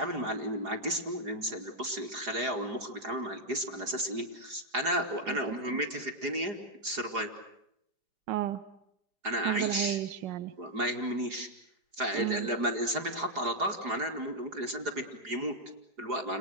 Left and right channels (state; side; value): late; left; 4.8 ms